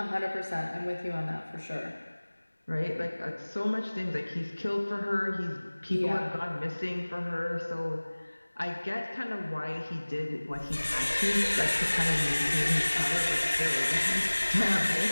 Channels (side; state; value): both; inverted; correlation -1.00